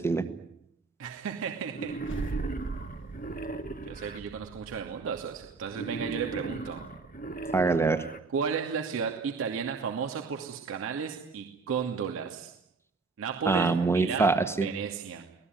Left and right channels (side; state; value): left; quieter; 4.3 dB